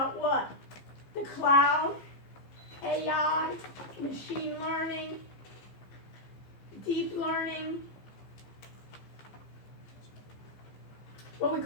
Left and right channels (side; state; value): right; late; 15 ms